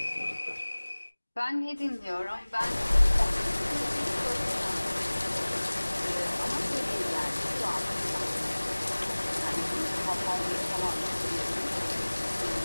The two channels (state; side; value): inverted; both; correlation -1.00